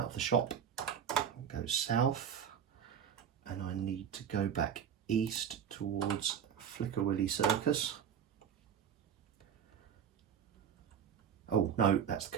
of the shop, go south, and I need to go back east towards Flicker Willy Circus. Oh no, that's the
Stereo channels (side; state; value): left; quieter; 8.2 dB